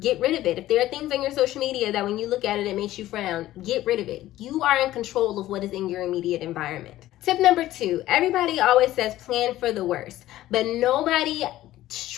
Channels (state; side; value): quieter; right; 14.8 dB